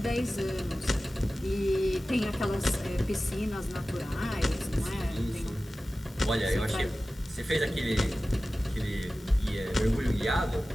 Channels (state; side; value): normal; both; correlation 0.96